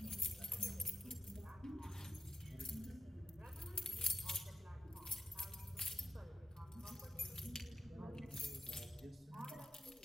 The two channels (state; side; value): normal; both; correlation 0.91